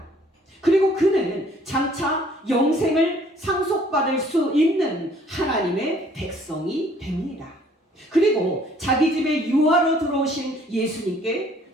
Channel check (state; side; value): normal; both; correlation 0.59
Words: 그리고 그는 장차 영생을 상속받을 수 있는 하나님의 백성이 됩니다. 그리고 자기 집에 유아로 들어오신 예수님께